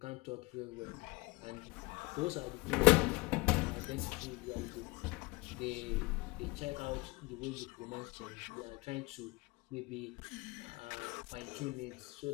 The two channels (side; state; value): right; quieter; 24.6 dB